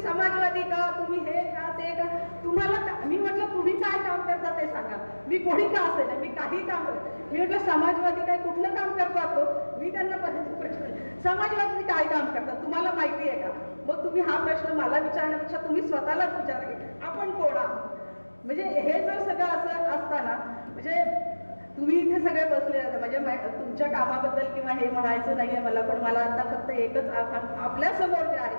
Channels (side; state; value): both; inverted; correlation -1.00